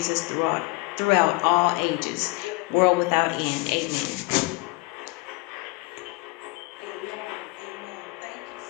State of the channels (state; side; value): quieter; right; 24.3 dB